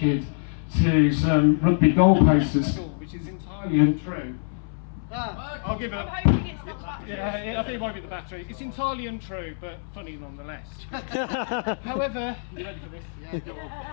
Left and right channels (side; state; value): right; silent; 61 dB below the other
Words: to some rugby goalposts at school, which is entirely untrue. I'll give it a... Yeah, I think it might be the battery. It's entirely untrue, but funny nonetheless. However, you ready for this?